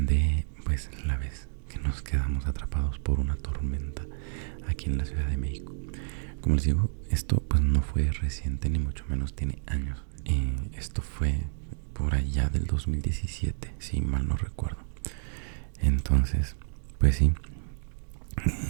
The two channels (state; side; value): silent; left; digital silence